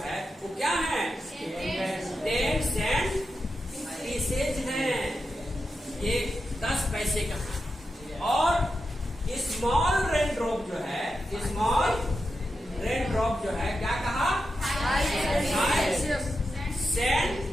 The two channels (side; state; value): both; normal; correlation 0.89